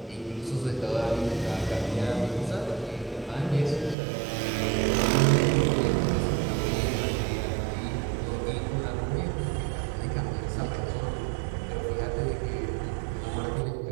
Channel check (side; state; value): left; drops out; at 4.0 s